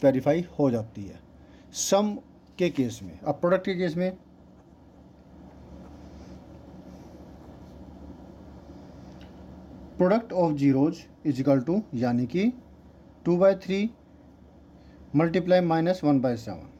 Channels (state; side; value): identical; both; correlation 1.00